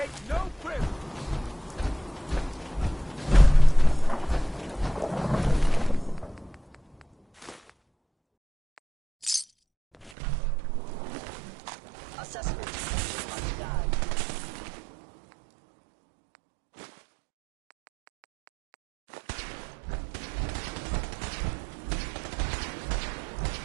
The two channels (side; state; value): left; drops out; at 10.1 s